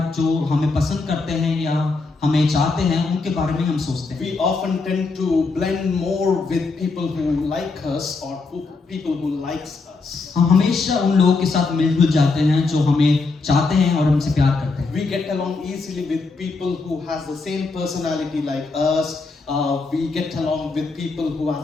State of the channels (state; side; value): quieter; right; 3.9 dB